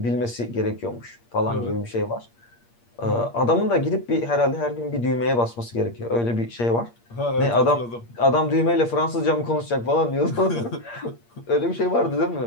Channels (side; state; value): right; late; 8.5 ms